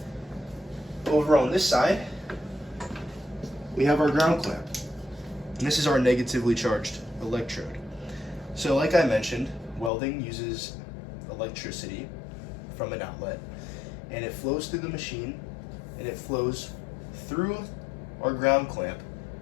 Over on this side, we have our ground clamp. And this is our negatively charged electrode. So like I mentioned, welding uses electricity from an outlet, and it flows through the machine, and it flows through our ground clamp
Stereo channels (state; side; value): drops out; right; at 9.9 s